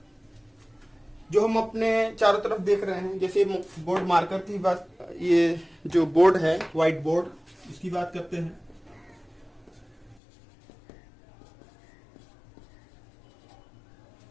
जो हम अपने चारों तरफ देख रहे हैं, जैसे बोर्ड मार्कर की बात, ये जो बोर्ड है व्हाइट बोर्ड, इसकी बात करते हैं।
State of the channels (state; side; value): drops out; right; at 10.2 s